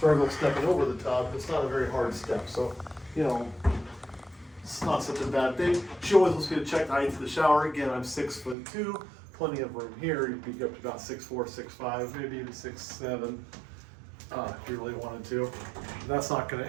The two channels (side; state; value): left; drops out; at 8.6 s